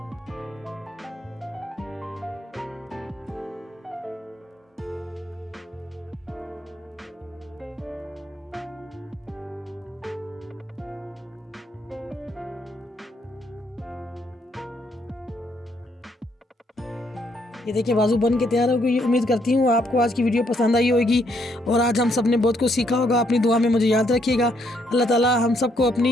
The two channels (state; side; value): normal; both; correlation 0.72